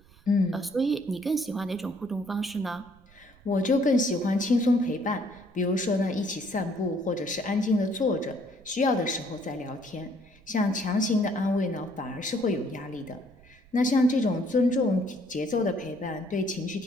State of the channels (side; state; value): right; noise; rumble, 26 dB below the sound